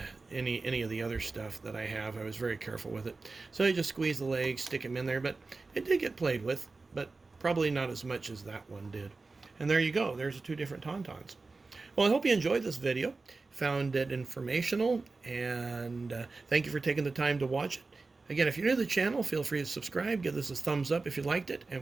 any of the other stuff that I have, I was very careful with it. So I just squeeze the legs, stick them in there, but it did get played with, but probably not as much as that one did. And there you go. There's the two different Tauntauns. Well, I hope you enjoyed this video. found it informational, and thank you for taking the time to watch it. Again, if you're new to the channel, feel free to subscribe, give this a thumbs up if you liked it,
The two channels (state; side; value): quieter; left; 3.8 dB